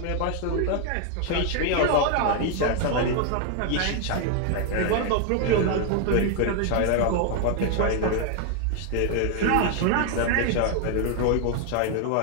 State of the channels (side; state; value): both; different; correlation 0.00